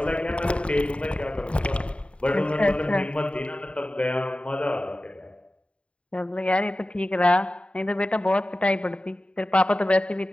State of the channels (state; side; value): late; right; 0.059 ms